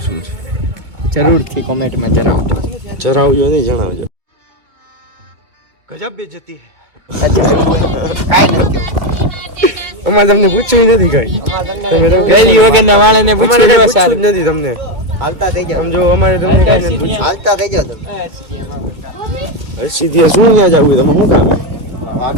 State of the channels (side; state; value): left; late; 2.3 ms